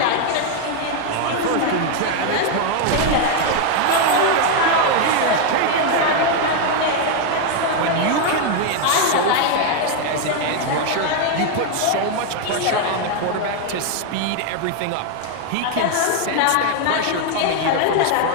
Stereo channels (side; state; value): both; different; correlation 0.01